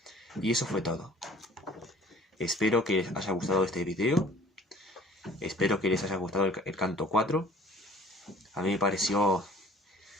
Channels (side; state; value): both; normal; correlation 0.50